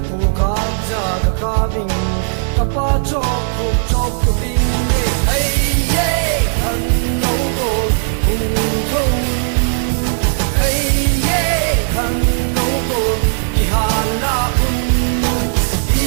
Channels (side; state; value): left; silent; digital silence